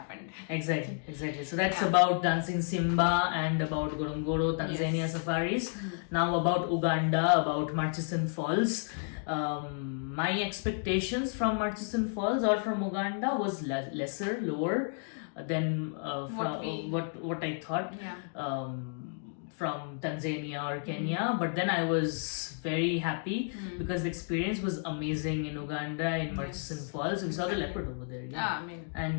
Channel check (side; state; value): right; silent; 57 dB below the other